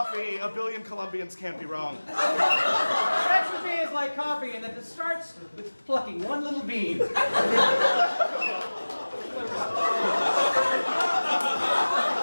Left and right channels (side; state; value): both; inverted; correlation -1.00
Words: A billion Colombians can't be wrong. Sex with me is like coffee and that it starts with plucking one little bean.